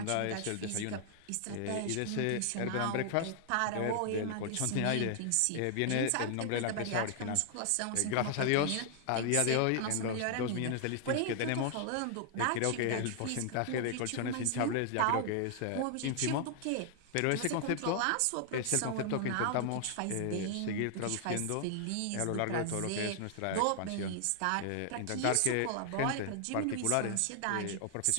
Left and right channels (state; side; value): different; both; correlation 0.00